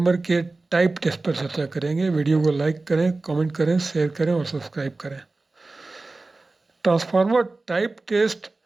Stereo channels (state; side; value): quieter; left; 3.4 dB